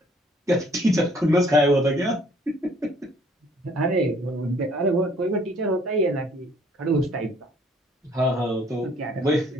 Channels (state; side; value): normal; both; correlation 0.61